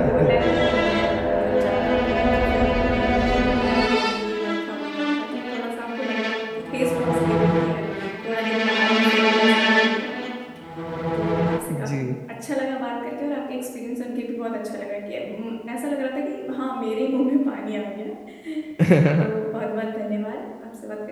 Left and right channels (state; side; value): identical; both; correlation 1.00